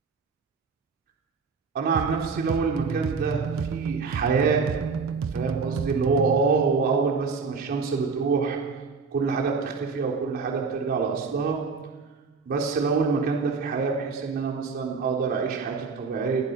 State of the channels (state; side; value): quieter; left; 4.8 dB